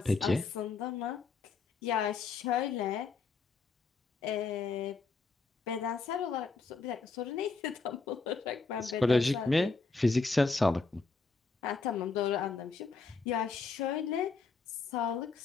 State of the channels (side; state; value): right; quieter; 4.4 dB